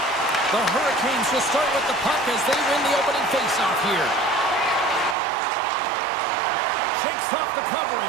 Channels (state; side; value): drops out; left; at 5.2 s